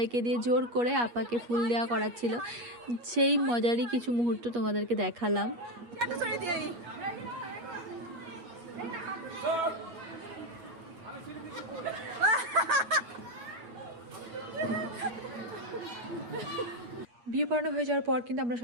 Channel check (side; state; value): left; late; 8.4 ms